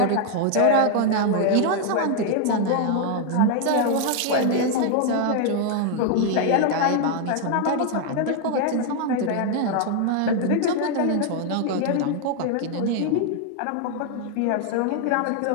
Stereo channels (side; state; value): both; different; correlation 0.00